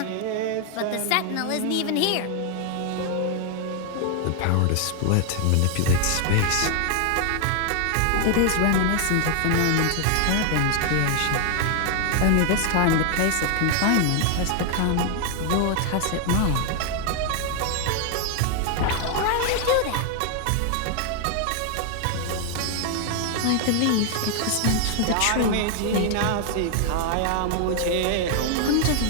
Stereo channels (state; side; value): different; both; correlation 0.00